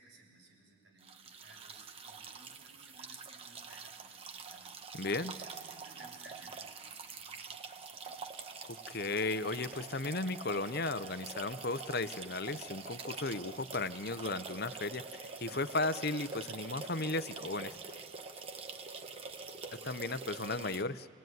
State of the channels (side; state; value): both; normal; correlation 0.08